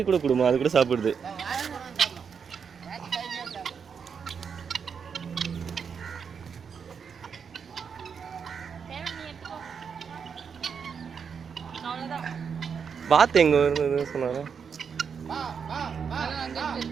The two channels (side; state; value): left; quieter; 6.5 dB